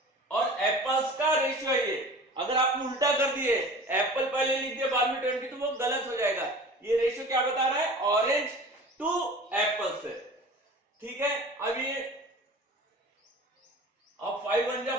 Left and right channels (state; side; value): normal; both; correlation 0.40